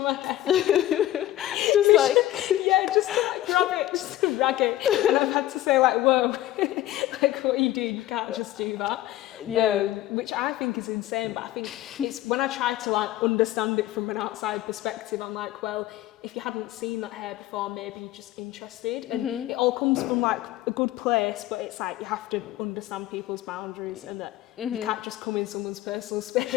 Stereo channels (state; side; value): quieter; right; 14.5 dB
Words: my hair. just like yeah, just to like grab it, just to rag it, and I've had to say like, whoa, like what are you doing? You can't just do that. Yeah. Which I think is insane, but I think it's when I try to like understand it from an outside perspective, I'm like, well, if you hadn't seen that hair before, maybe you're just interested. And it all comes from like a good place, but it's like you have to understand people's boundaries, and that you can't just come in someone's personal